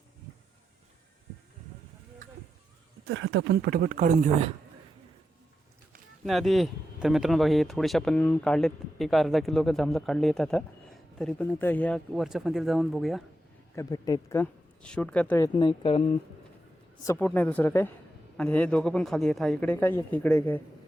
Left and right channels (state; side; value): normal; both; correlation 0.87